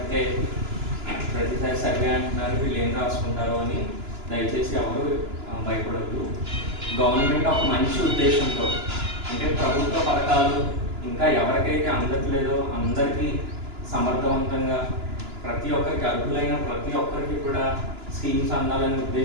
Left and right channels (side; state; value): left; late; 2.9 ms